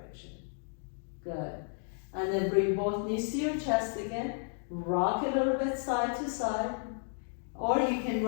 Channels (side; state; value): right; silent; digital silence